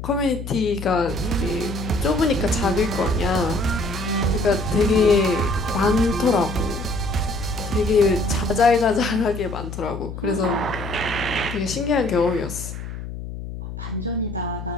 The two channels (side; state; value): left; noise; hum, 9 dB below the sound